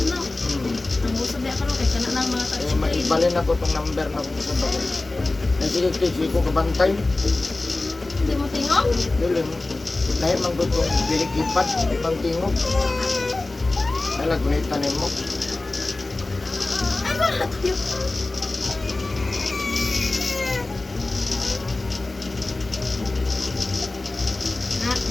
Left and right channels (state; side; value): quieter; right; 3.0 dB